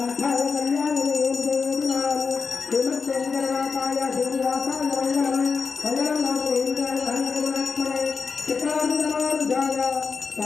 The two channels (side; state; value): right; quieter; 5.1 dB